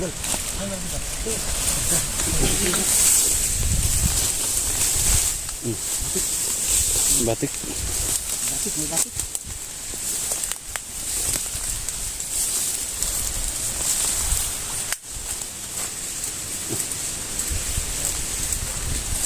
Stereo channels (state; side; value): identical; both; correlation 1.00